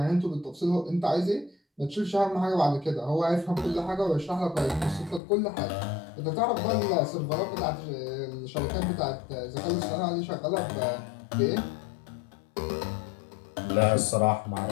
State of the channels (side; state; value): right; drops out; at 5.2 s